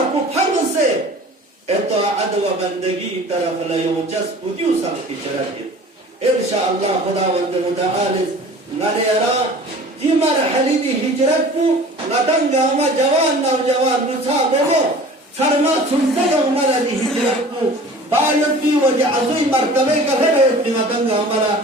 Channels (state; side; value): normal; both; correlation 0.43